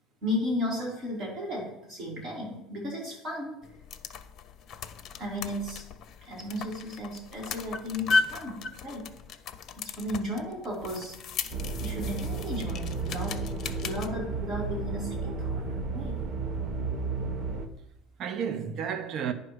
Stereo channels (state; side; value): normal; both; correlation 0.38